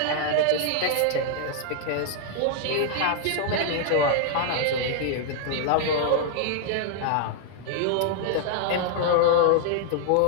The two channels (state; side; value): different; both; correlation 0.00